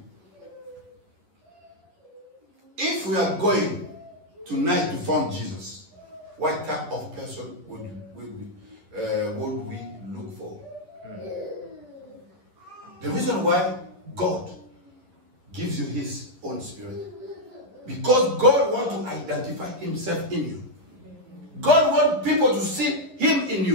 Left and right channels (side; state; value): left; late; 11 ms